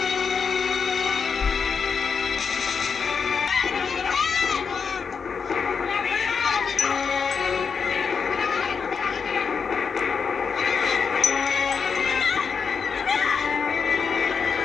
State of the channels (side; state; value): right; quieter; 5.9 dB